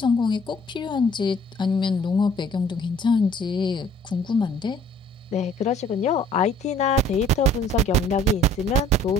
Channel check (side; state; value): both; normal; correlation 0.57